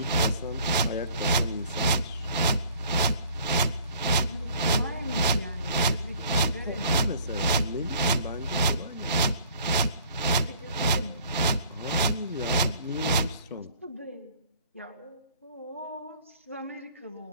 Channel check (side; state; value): both; inverted; correlation -0.54